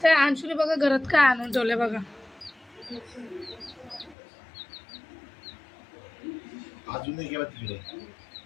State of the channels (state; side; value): drops out; right; at 4.2 s